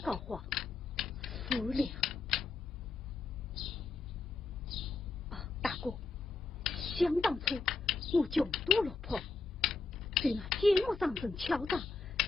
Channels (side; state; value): right; quieter; 4.0 dB